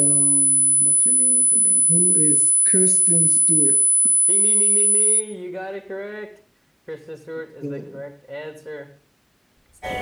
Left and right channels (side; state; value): both; identical; correlation 1.00